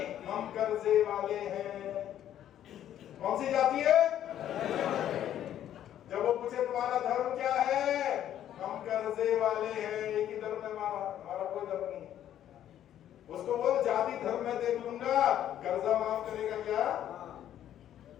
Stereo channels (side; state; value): right; quieter; 11.1 dB